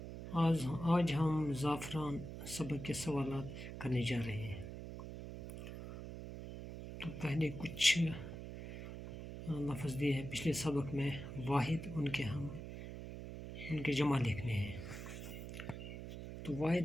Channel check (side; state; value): right; noise; hum, 9 dB below the sound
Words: آج ہم زعفران سبق کے سوالات کرنے جا رہے ہیں۔ تو پہلے کچھ لفظ دیے ہیں پچھلے سبق میں، واحد ان کے جمع لکھنے ہیں۔ تو